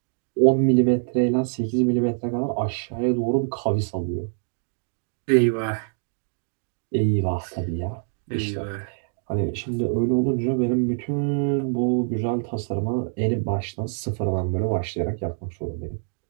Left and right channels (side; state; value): left; silent; digital silence